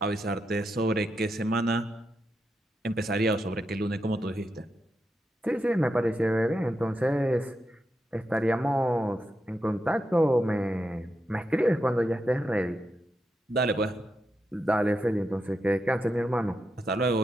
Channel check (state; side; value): normal; both; correlation 0.86